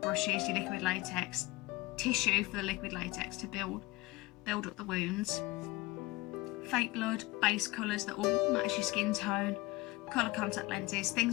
brushes, your liquid latex, tissue for the liquid latex to build up the wounds, fake blood, base colours that will match your skin tone, colour contact lenses,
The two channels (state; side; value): quieter; right; 21.1 dB